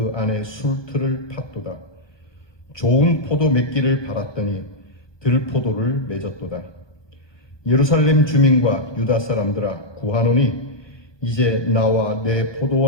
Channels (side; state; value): right; late; 1.2 ms